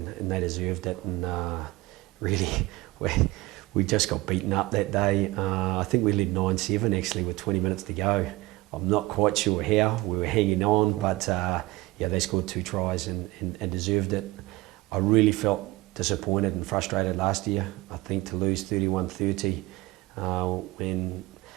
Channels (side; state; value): left; quieter; 20.1 dB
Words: they deserved it. And really, we just got beaten up that day. I think we led 9-7 actually with 20 minutes to go. I'm not quite sure how. We were hanging on, but they scored 2 tries and deserved it. I really felt disappointed and frustrated last year. I think to lose 31-30 when